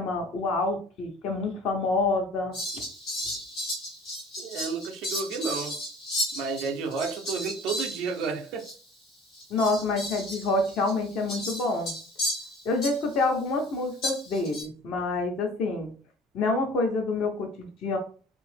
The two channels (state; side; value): normal; both; correlation 0.46